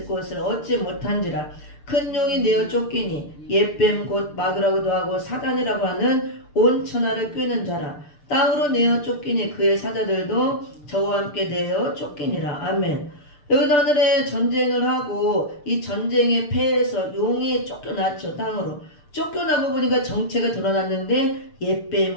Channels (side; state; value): right; late; 6.8 ms